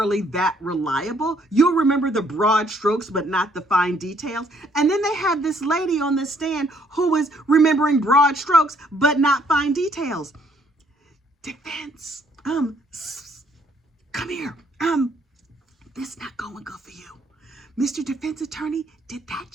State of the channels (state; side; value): normal; both; correlation 0.66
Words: that reliable. You'll remember the broad strokes, but not the fine details. And then they had this lady on the stand who was remembering broad strokes, but not fine details. Defense, come here. This not going good for you. Mr. Defense Attorney, did that